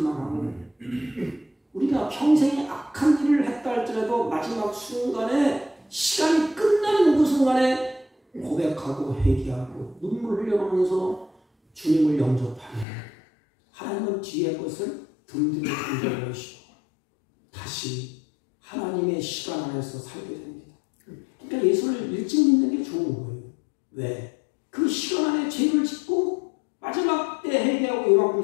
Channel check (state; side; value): drops out; right; at 12.9 s